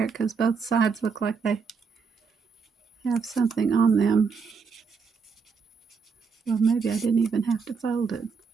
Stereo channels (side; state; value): left; quieter; 5.4 dB